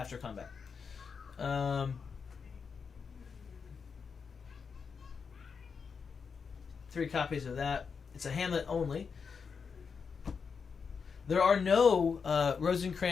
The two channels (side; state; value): right; quieter; 5.8 dB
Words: combat. 3 copies of that. It's a Hamlet only. There are no